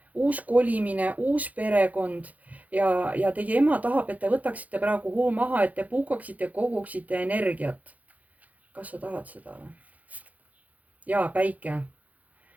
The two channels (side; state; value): left; late; 0.076 ms